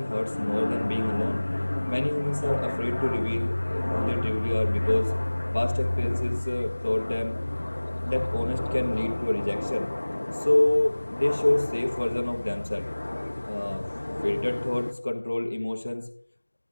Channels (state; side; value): inverted; both; correlation -1.00